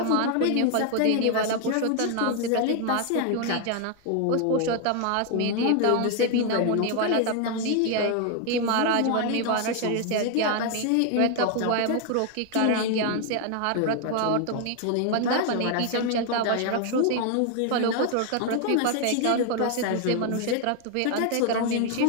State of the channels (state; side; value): different; both; correlation 0.00